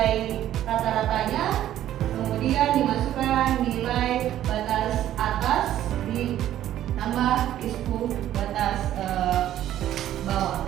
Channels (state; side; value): quieter; left; 12.3 dB